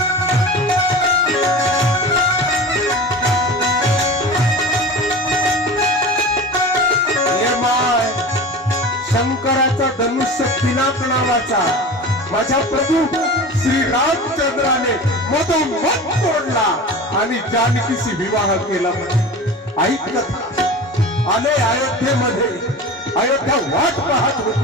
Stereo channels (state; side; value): normal; both; correlation 0.33